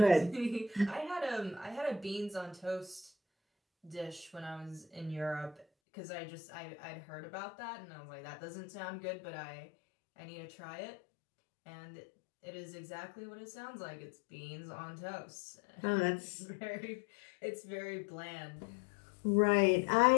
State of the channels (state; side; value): drops out; right; at 5.7 s